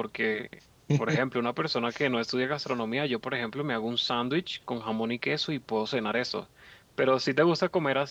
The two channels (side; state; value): both; identical; correlation 1.00